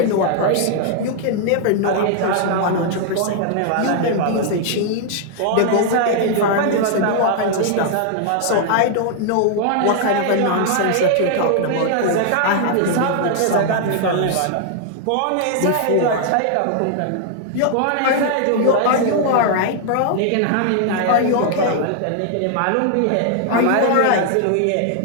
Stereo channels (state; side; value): different; both; correlation 0.00